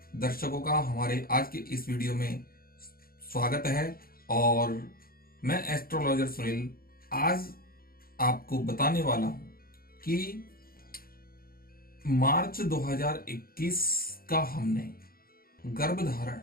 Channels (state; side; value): late; right; 0.43 ms